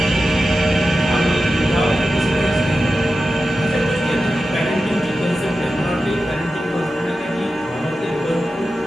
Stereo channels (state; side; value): normal; both; correlation 0.92